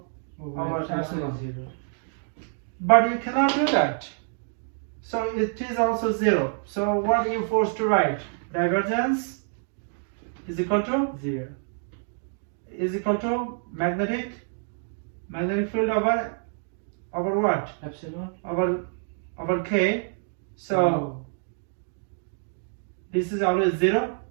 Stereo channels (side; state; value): left; silent; 60 dB below the other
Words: over epsilon. 0. But you cannot do that. So it is also zero. So what are you forced to write? Divergence is equal to 0. is equal to magnetic Magnetic field over what? Epsilon. Over K. So Oh. this is always 0.